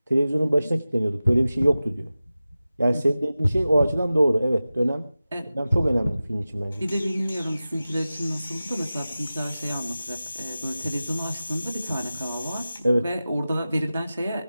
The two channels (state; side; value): inverted; both; correlation -0.95